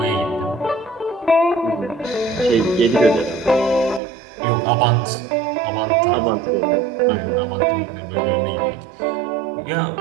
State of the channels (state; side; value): drops out; left; at 4.0 s